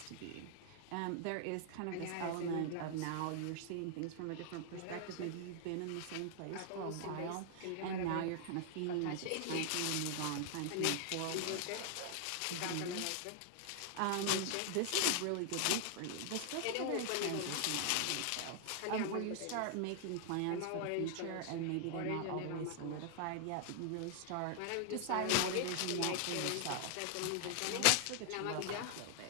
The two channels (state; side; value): different; both; correlation 0.00